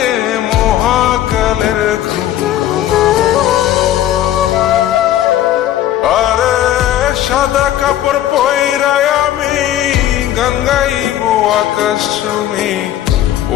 মহাকালের ঘুম ঘুমাবো। আরে সাদা কাপড় পয়রায় আমি গান গাইব আকাশ চুমি,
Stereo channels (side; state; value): right; quieter; 12.4 dB